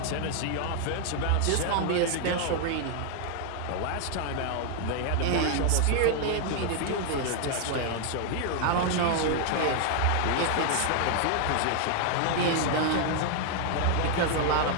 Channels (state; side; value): different; both; correlation 0.00